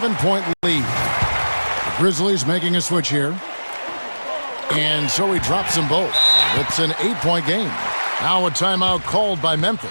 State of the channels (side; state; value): both; inverted; correlation -1.00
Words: lead. The Grizzlies making a switch here. And so he drops them both. It's an 8-point game. Now a timeout called by